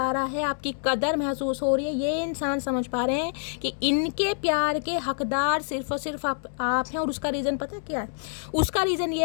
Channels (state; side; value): silent; right; digital silence